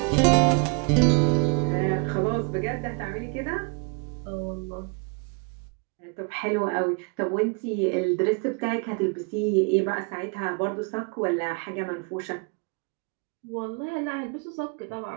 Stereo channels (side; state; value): left; quieter; 35.7 dB